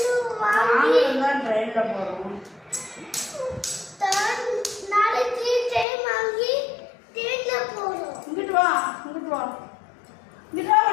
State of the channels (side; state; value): right; drops out; at 5.9 s